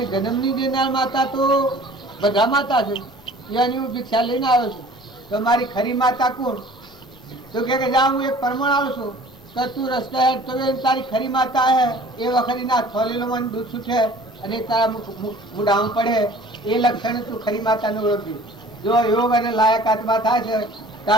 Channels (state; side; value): noise; left; rumble, 29 dB below the sound